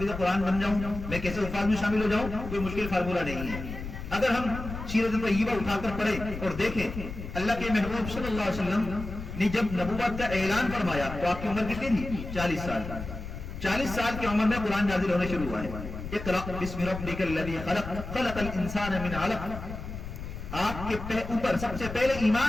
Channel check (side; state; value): left; noise; rumble, 9 dB below the sound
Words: قرآن بن جاؤں، میں کیسے حفاظ میں شامل ہو جاؤں، کوئی مشکل فارمولہ نہیں ہے۔ اگر ہم سیرت طیبہ اٹھا کر پڑھیں اور دیکھیں اللہ کے محبوب صلی اللہ علیہ وسلم نے جب نبوت کا اعلان فرمایا تو آپ کی عمر کتنی تھی؟ 40 سال۔ 40 سال کی عمر میں قرآن نازل ہونا شروع ہوا ہے۔ اقرأ بسم ربک الذی خلق خلق الانسان من علق۔ آپ کے اوپر سب سے پہلے